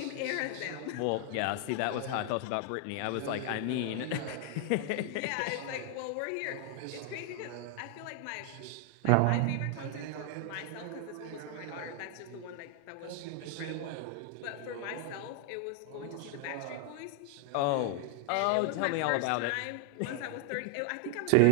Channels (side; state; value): both; different; correlation 0.00